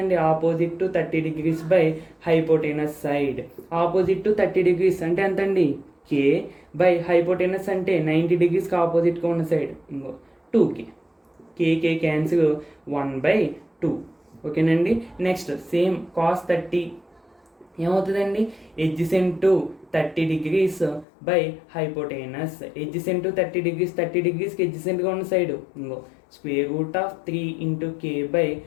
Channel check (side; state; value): right; drops out; at 21.1 s